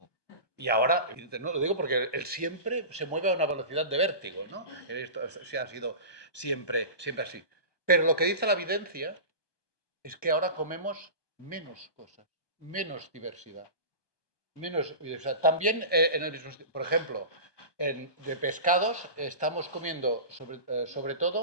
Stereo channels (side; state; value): right; late; 1.2 ms